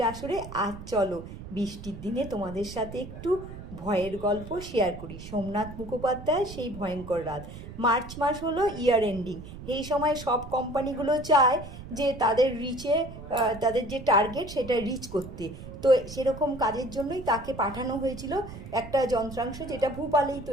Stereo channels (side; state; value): right; noise; rumble, 13 dB below the sound